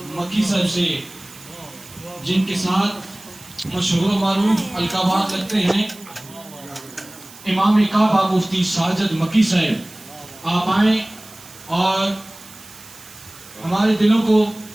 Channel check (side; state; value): right; noise; hiss, 20 dB below the sound